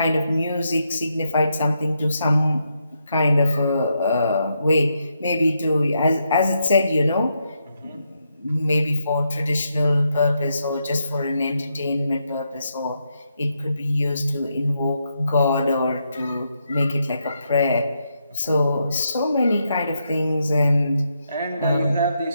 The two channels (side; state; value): both; inverted; correlation -0.81